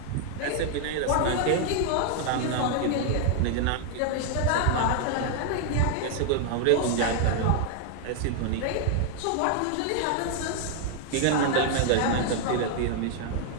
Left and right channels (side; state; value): both; different; correlation 0.00